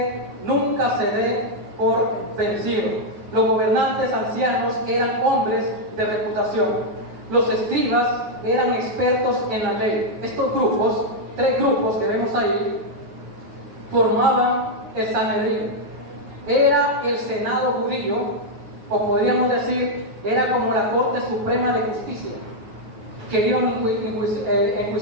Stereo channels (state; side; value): late; left; 9.4 ms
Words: nunca se dé por vencido. Los gobernantes ancianos eran hombres de reputación. Los escribas eran expertos en la ley. Estos grupos, 3 grupos que vemos ahí, formaban el Sanedrín. Era el Senado judío, o podríamos decir, era como la Corte Suprema de Justicia. Querían